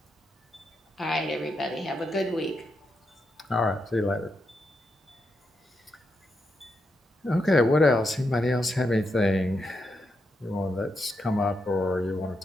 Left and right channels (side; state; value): both; normal; correlation 0.83